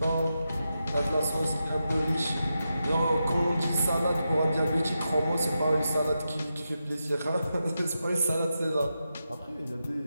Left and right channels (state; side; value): inverted; both; correlation -0.88